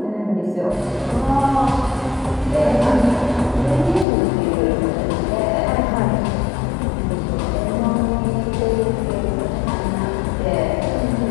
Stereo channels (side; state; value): right; drops out; at 4.0 s